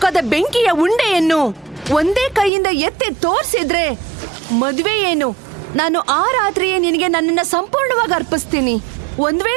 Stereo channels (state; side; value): drops out; left; at 2.5 s